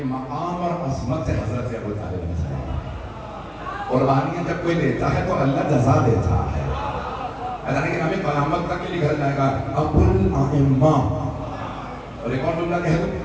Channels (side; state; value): both; identical; correlation 1.00